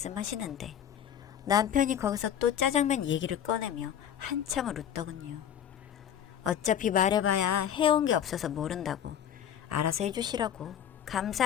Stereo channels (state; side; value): quieter; right; 9.5 dB